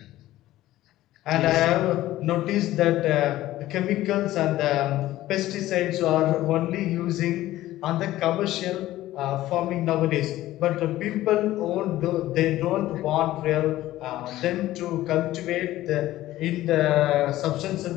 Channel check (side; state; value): right; quieter; 15.3 dB